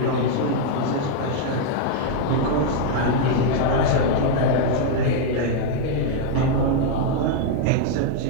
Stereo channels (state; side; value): different; both; correlation 0.00